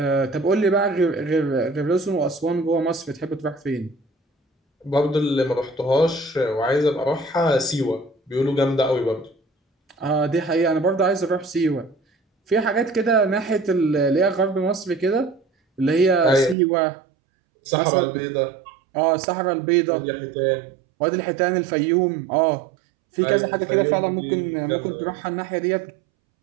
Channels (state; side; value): drops out; left; at 16.6 s